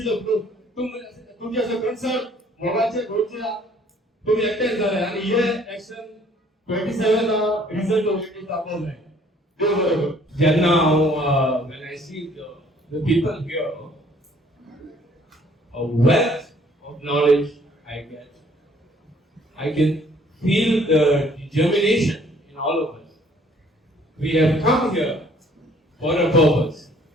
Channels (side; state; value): both; normal; correlation 0.59